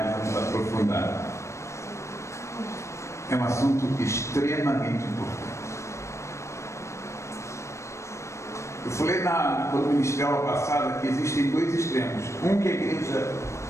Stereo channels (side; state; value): right; late; 0.14 ms